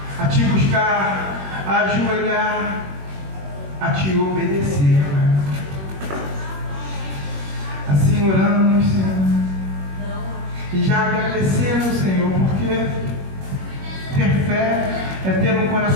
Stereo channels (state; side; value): late; left; 21 ms